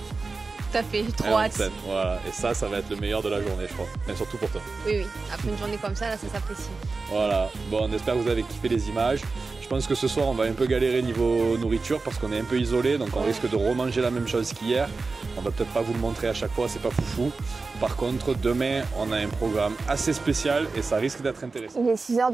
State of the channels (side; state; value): left; quieter; 4.0 dB